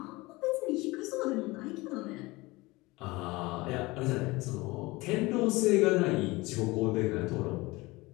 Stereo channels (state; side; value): quieter; right; 22.1 dB